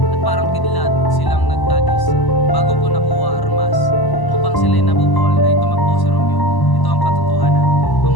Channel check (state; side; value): late; right; 1.0 ms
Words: At parang kidlat silang nagtagis bago ko nakuha armas upang sila'y nabubuhol ay tumakbo si Romeo. Ito ang katotohanan.